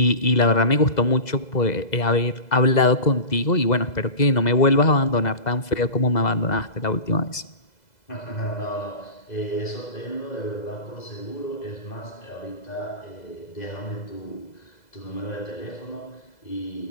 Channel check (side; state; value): right; late; 2.0 ms